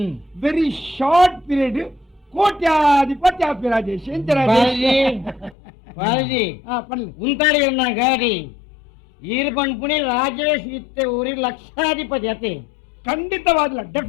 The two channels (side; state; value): right; drops out; at 5.6 s